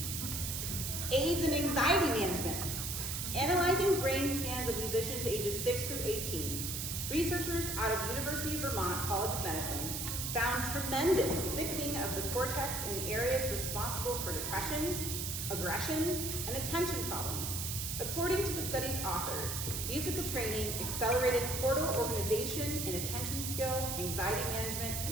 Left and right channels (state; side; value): noise; right; hiss, 3 dB below the sound